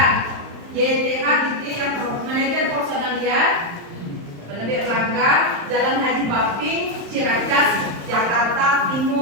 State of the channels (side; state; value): left; late; 35 ms